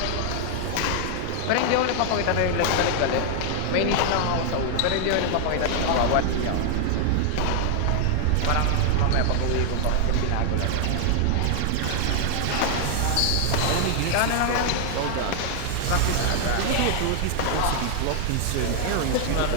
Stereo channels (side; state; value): both; different; correlation 0.00